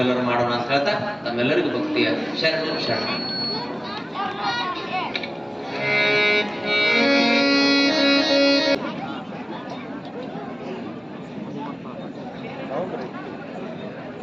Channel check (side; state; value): both; identical; correlation 1.00